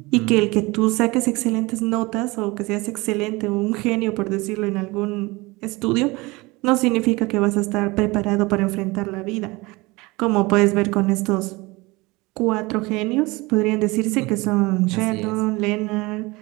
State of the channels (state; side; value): quieter; left; 23.3 dB